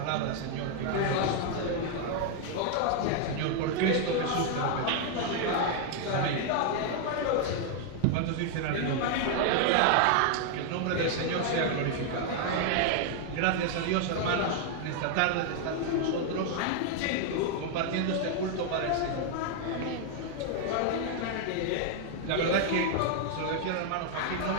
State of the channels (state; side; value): different; both; correlation 0.00